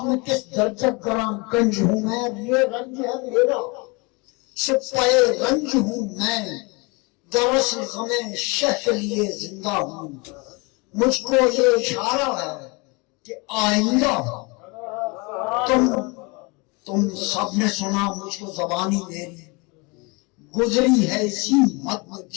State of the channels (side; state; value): right; quieter; 28.4 dB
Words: میں کس درجہ گران گنج ہوں میں، یہ رنج ہے میرا سپائے رنج ہوں میں، دراصل غم شہ کے لیے زندہ ہوں، مجھ کو یہ اشارہ ہے کہ آئندہ تم سب نے سنا، مجھ کو زبانی میری گزری ہے اسی مت میں